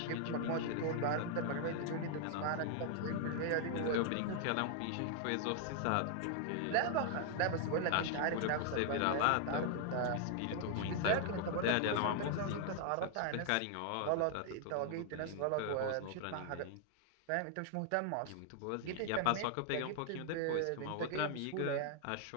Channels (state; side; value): different; both; correlation 0.00